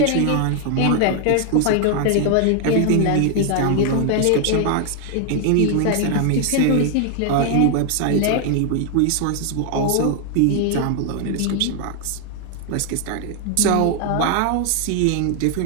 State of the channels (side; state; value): both; different; correlation 0.00